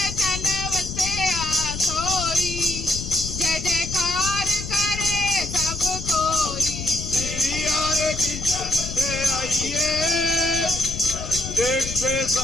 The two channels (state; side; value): noise; left; rumble, 7 dB below the sound